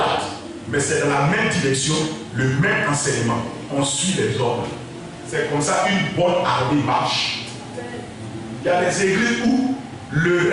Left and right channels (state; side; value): identical; both; correlation 1.00